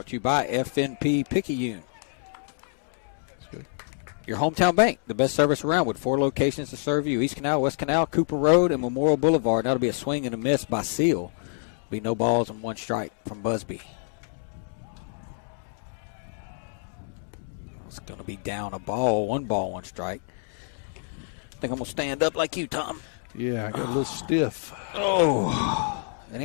to you by FNP Picayune. Your hometown bank, the best service around, with 4 locations to serve you: East Canal, West Canal, Cooper Road, and Memorial Boulevard. That'll be a swing and a miss by Seal. Be no balls and 1 strike from Busby. It's going to be down a ball, 1 ball, 1 strike. I think I'm going to stand up like you, Tom. Yeah, I got a little stiff. Oh, it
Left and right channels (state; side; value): silent; right; digital silence